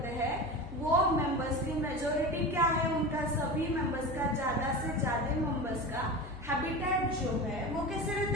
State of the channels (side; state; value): left; noise; hum, 15 dB below the sound